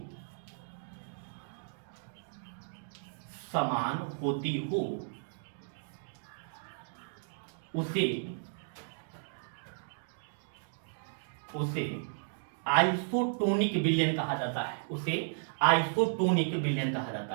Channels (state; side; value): silent; left; digital silence